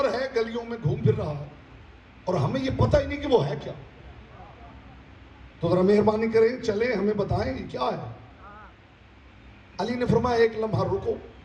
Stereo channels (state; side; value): identical; both; correlation 1.00